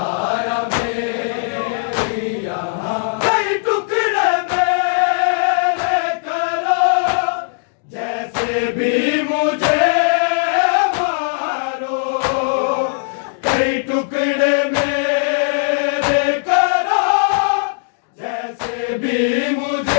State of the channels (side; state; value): right; silent; digital silence